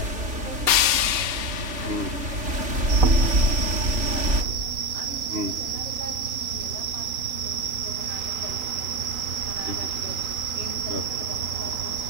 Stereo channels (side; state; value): left; late; 2.7 ms